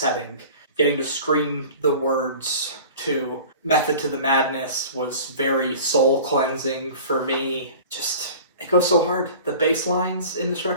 getting to scream the words to Method to the Madness was very soul cleansing for me. Just, it goes so hard. The bass lines in this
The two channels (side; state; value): both; inverted; correlation -0.41